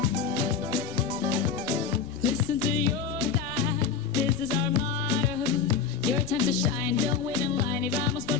Listen to your dad, this is our motto. Your time to shine, don't wait in line y vamos por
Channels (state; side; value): quieter; right; 6.4 dB